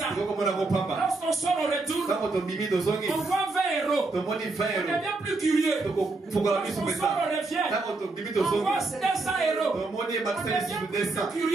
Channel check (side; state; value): left; quieter; 3.4 dB